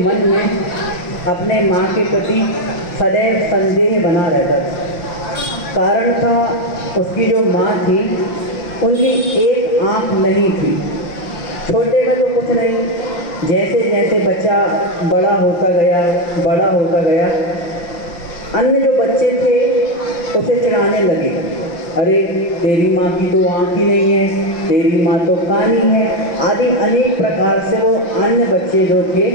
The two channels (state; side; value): late; right; 5.8 ms